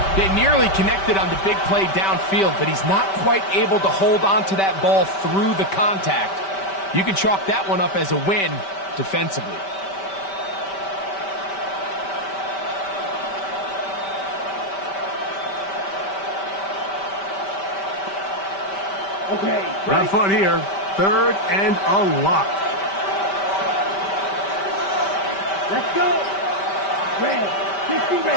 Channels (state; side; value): late; right; 5.1 ms